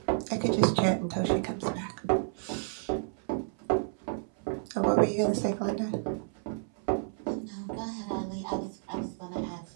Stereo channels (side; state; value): left; silent; 57 dB below the other